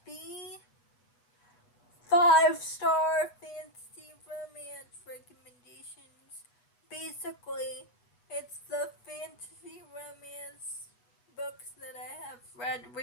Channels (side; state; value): right; late; 7.9 ms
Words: be 5-star fantasy romance recommendations. Basically, it's the fantasy romance books that I have read